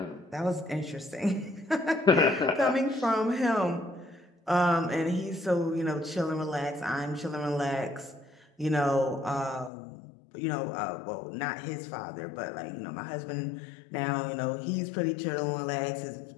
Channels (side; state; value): right; drops out; at 9.7 s